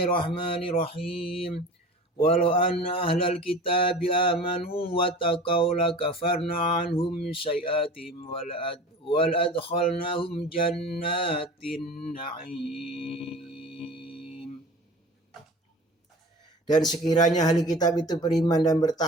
Walau anna ahlal kitabi amanu wa taqaw lakafarna anhum sayi'atihim wal adkhalnahum jannatin na'im. Dan sekiranya ahli kitab itu beriman dan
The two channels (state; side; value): normal; both; correlation 0.38